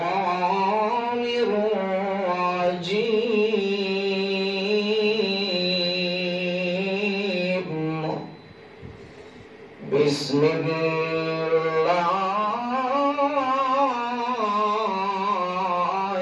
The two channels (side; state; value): both; identical; correlation 1.00